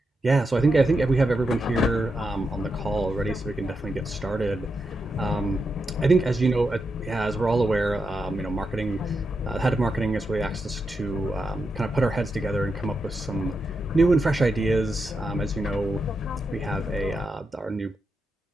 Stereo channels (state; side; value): normal; both; correlation 0.86